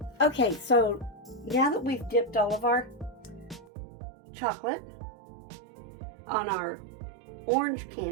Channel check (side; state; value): left; drops out; at 3.7 s